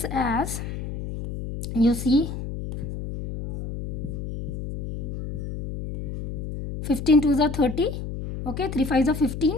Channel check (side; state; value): left; noise; hum, 7 dB below the sound